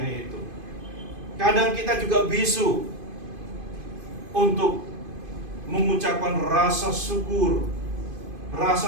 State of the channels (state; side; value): late; left; 2.5 ms